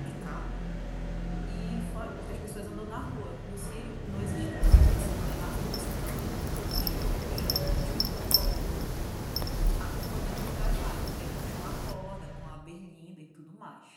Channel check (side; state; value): both; identical; correlation 1.00